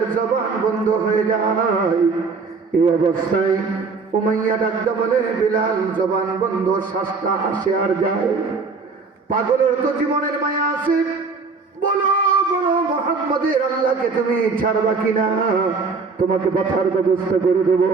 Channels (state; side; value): quieter; left; 4.6 dB